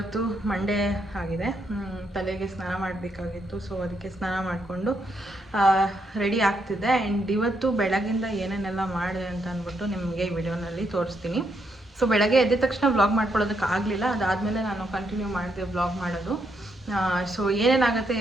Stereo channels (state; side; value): normal; both; correlation 0.77